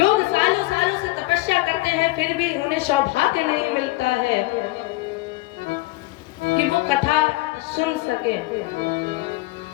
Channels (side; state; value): right; quieter; 20.2 dB